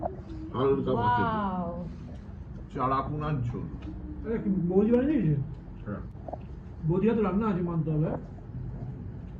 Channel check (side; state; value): both; identical; correlation 1.00